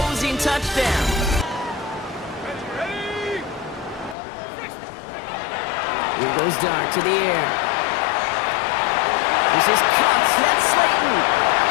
touchdown. Here goes Dart to the air. This is Cox. That's Slayton.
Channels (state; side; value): drops out; right; at 4.2 s